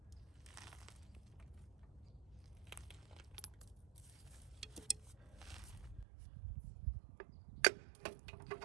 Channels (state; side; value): drops out; left; at 6.1 s